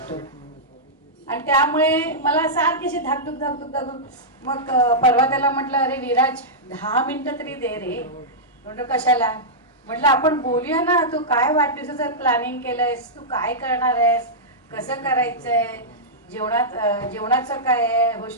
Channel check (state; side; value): normal; both; correlation -0.11